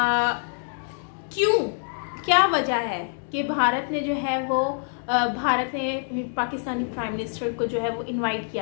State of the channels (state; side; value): silent; right; 61 dB below the other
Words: क्या वजह है कि भारत ने जो है वो भारत ने पाकिस्तानी प्राइम मिनिस्टर को जो है वो इनवाइट